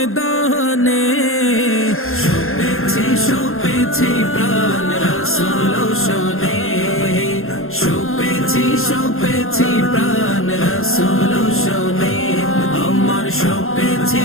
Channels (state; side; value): late; right; 0.61 ms